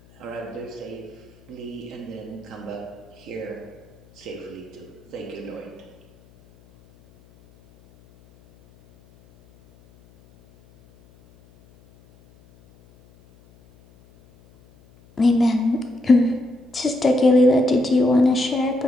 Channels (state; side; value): noise; left; hum, 28 dB below the sound